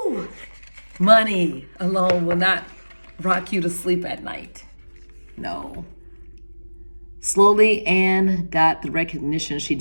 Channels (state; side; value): inverted; both; correlation -1.00